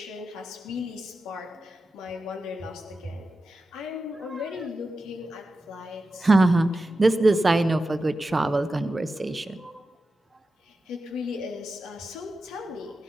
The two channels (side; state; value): both; normal; correlation 0.91